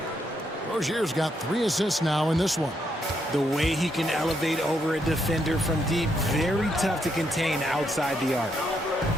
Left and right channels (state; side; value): normal; both; correlation 0.77